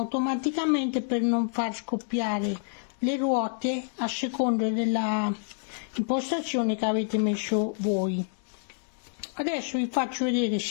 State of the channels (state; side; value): silent; right; digital silence